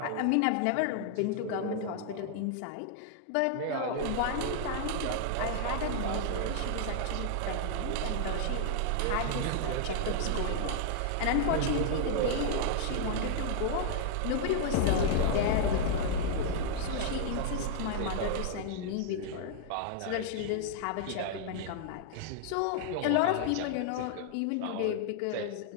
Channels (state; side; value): different; both; correlation 0.00